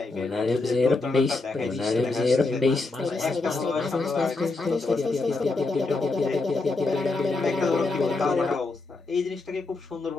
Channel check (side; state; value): right; quieter; 3.5 dB